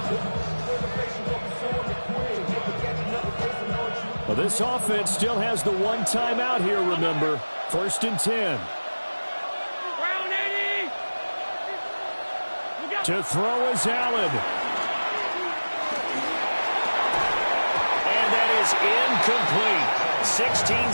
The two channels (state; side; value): inverted; both; correlation -1.00